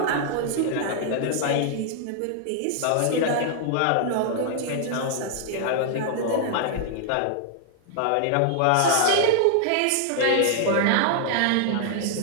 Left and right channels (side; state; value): both; different; correlation -0.01